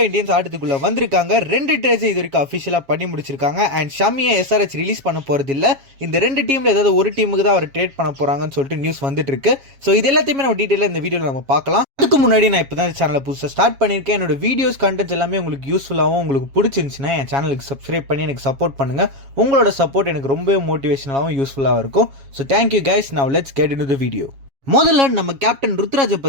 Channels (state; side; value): late; left; 7.3 ms